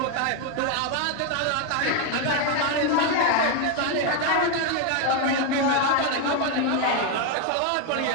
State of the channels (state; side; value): different; both; correlation 0.01